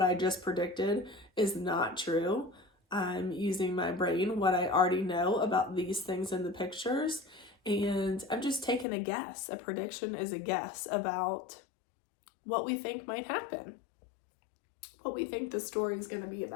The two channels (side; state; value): right; drops out; at 8.8 s